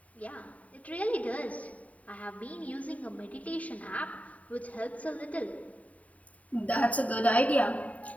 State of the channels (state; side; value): late; right; 0.069 ms